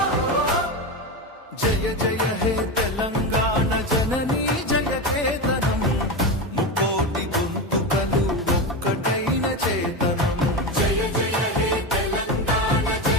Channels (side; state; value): both; normal; correlation 0.18